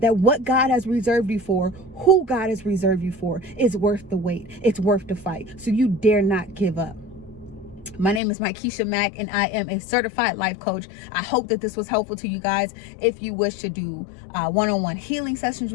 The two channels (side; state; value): right; drops out; at 8.2 s